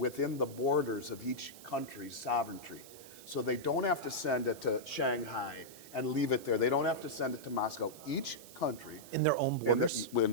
the borders of each country's sovereignty. So they don't have to send it to Shanghai and leave it there. They don't have to send it to Moscow. Each country In their own borders? in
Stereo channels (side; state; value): right; noise; hiss, 18 dB below the sound